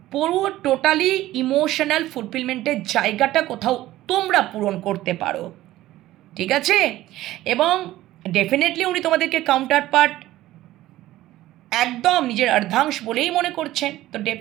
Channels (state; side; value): quieter; left; 15.5 dB